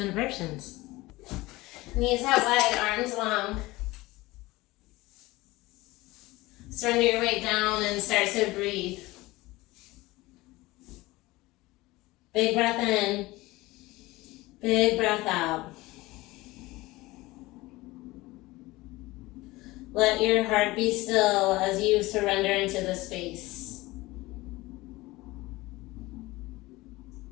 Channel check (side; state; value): right; quieter; 20.1 dB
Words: Knees out wide, arms long. Surrender your weight down and start to breathe. Big breath in, big breath out. Let your heart be still as you surrender into the space.